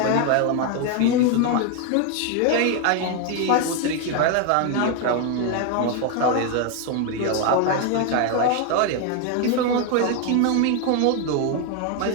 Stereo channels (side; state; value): both; different; correlation 0.01